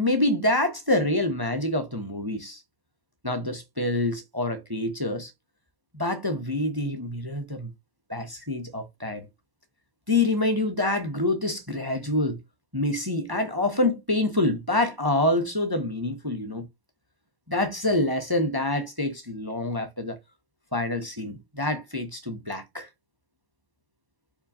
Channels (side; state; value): left; late; 1.0 ms